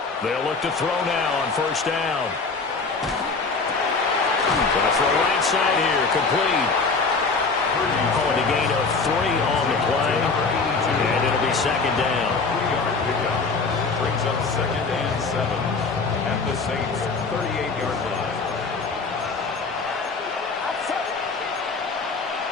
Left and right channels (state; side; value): quieter; right; 4.3 dB